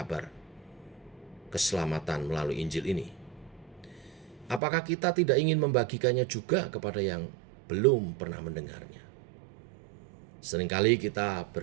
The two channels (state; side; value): drops out; left; at 4.6 s